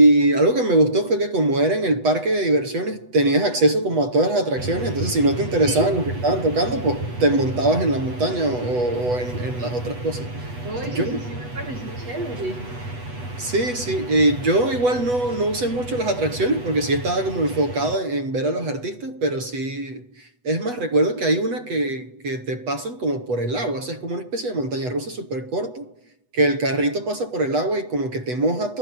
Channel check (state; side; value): late; left; 8.1 ms